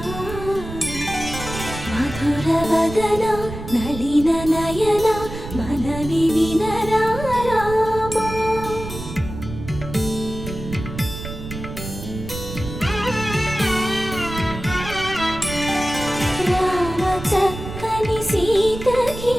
మధుర వదన నళిన నయన మనవి వినరా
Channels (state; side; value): noise; right; rumble, 10 dB below the sound